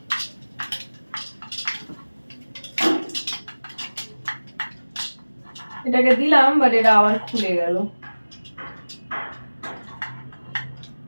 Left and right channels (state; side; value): inverted; both; correlation -1.00